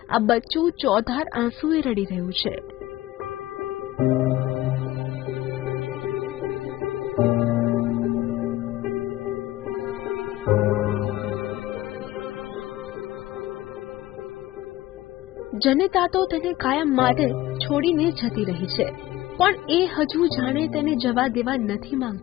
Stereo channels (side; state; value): right; quieter; 16.2 dB